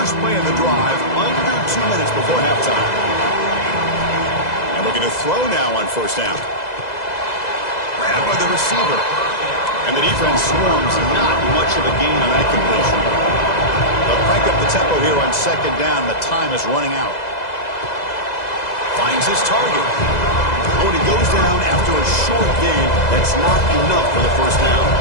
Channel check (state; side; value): late; right; 2.0 ms